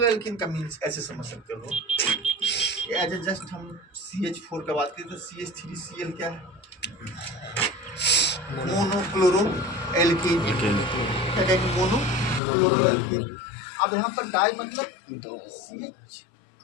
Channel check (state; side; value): drops out; right; at 12.4 s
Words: एल्किन का मीन्स ऐसे समझ सकते हो, एज जस्ट हम CH4 का बात करें तो CH3Cl क्या है, मोनोक्लोरो एल्कीन, क्या कहेंगे, मोनोक्लोरो एल्कीन। अब यहाँ पर डाई मतलब